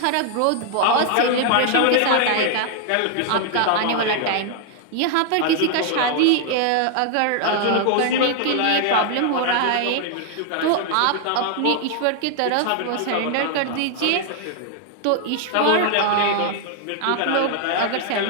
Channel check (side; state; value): both; different; correlation 0.00